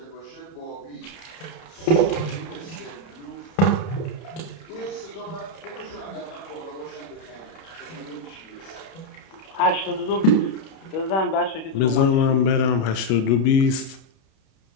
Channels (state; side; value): late; right; 31 ms